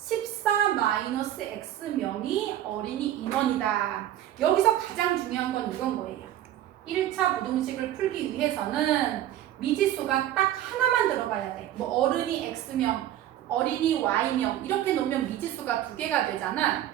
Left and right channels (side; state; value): left; quieter; 12.5 dB